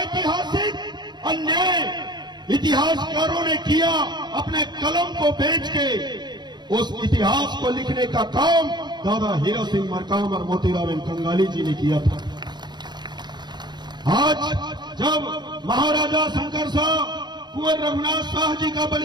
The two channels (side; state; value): left; late; 0.21 ms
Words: अन्याय इतिहासकारों ने किया, अपने कलम को बेच के उस इतिहास को लिखने का काम दादा हीरा सिंह मरकाम और मोतीराम कंगाली जी ने किया था। आज जब महाराजा शंकर शाह कुंवर रघुनाथ शाह जी का